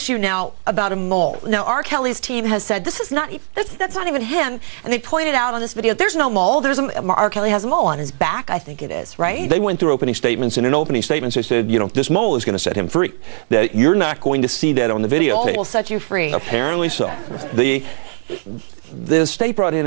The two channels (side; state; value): left; silent; 62 dB below the other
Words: now about a mole. Now, R. Kelly's team has said this is not that's not even him, and they pointed out on this video there's no mole. R. Kelly has a mole on his back, I think it is, right? They went through opening statements, and in opening statements they said, you know, this mole is going to set him free. That you're not going to see that on the videotape. The mole will set you free. Apparently so. The state brought